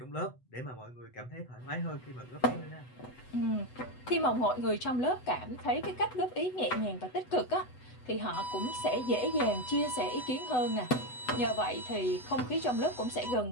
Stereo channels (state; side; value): late; right; 8.0 ms